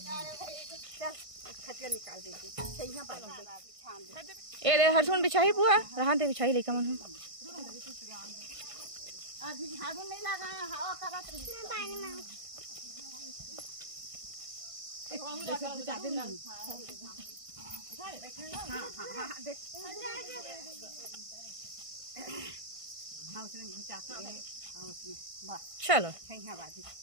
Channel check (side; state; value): left; late; 1.5 ms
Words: ए रे हरसुन बिछाई बुआ रहा दे बिछाई लेकर मन चलो